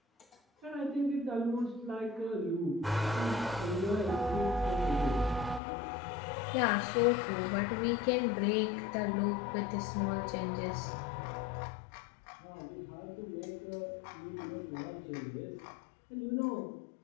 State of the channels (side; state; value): right; drops out; at 5.6 s